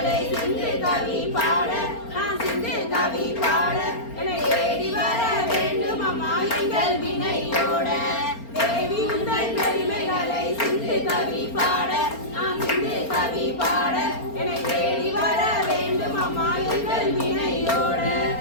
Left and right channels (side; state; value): right; late; 4.3 ms